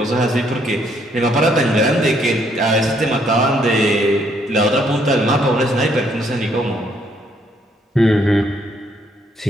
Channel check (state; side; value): normal; both; correlation 0.69